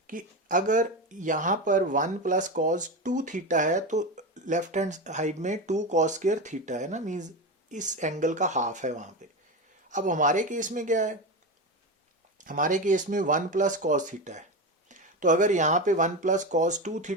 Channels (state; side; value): normal; both; correlation 0.19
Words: कि अगर यहाँ पर 1 प्लस cos 2 थीटा है तो लेफ्ट हैंड साइड में 2 cos स्क्वायर थीटा है ना, मीन्स इस एंगल का हाफ है वहाँ पे। अब हमारे केस में क्या है, हमारे केस में 1 प्लस cos थीटा है, तो अगर यहाँ पे 1 प्लस cos 2